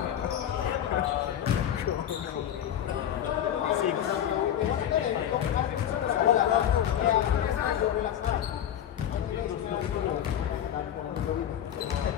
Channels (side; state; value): right; quieter; 10.3 dB